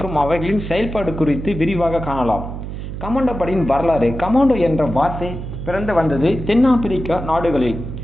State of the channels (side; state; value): right; noise; hum, 8 dB below the sound